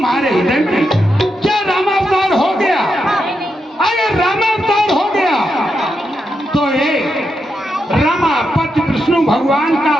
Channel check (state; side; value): normal; both; correlation 0.85